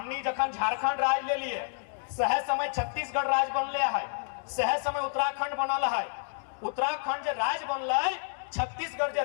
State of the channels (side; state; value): right; silent; digital silence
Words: जखन झारखंड राज ले लिए, सह समय छत्तीसगढ़ राज बनले है, सह समय उत्तराखंड बनल है, उत्तराखंड जो राज बनल, छत्तीसगढ़ जो